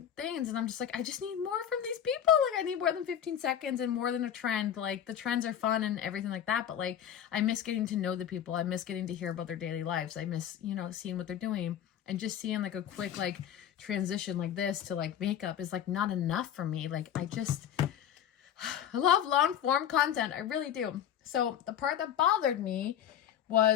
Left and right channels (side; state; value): right; quieter; 9.9 dB